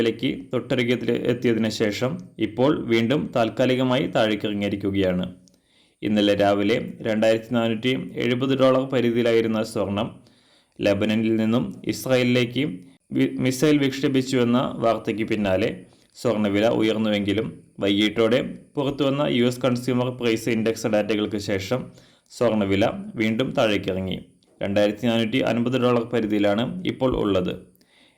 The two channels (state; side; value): identical; both; correlation 1.00